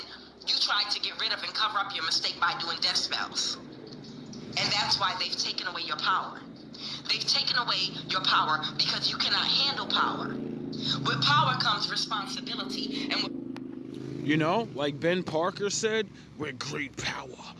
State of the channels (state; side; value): identical; both; correlation 1.00